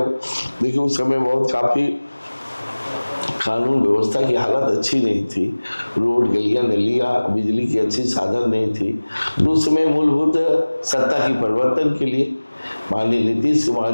देखिए उस समय बहुत काफ़ी कानून व्यवस्था की हालत अच्छी नहीं थी, रोड गलियां नलियां बिजली की अच्छी साधन नहीं थी। तो उस समय मूलभूत सत्ता की परिवर्तन के लिए माननीय नीतीश कुमार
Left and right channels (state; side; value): inverted; both; correlation -1.00